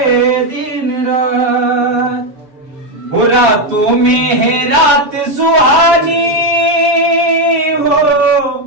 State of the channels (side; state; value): left; late; 6.6 ms